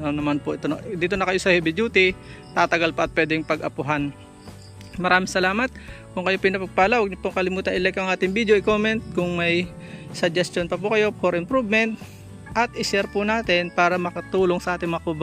naman po ito. Dito na kayo sa heavy duty, tatagal pa at pwedeng pag-apuhan. Maraming salamat. Kung kayo pinapagpala, huwag niyo pong kalimutan i-like ang ating video, i-comment kung may suggestion pa po kayo for improvement, at i-share po natin para makatulong sa ating mga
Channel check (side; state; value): both; identical; correlation 1.00